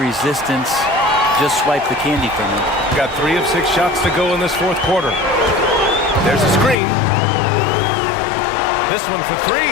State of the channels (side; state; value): right; drops out; at 6.8 s